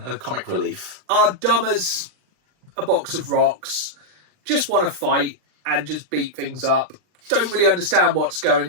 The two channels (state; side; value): late; left; 39 ms